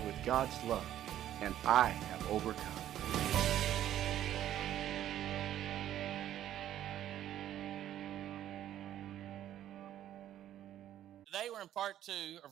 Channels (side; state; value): left; quieter; 11.8 dB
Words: with God's love, and I have overcome. Today we're in part 2 of